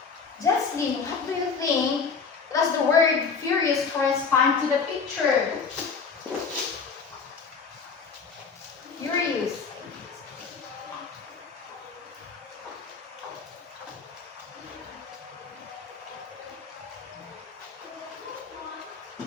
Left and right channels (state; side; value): quieter; right; 5.3 dB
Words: Jocelyn, what do you think does the word furious correspond to the picture? Furious.